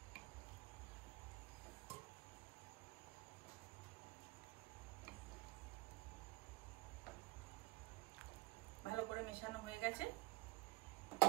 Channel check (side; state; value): left; quieter; 21.4 dB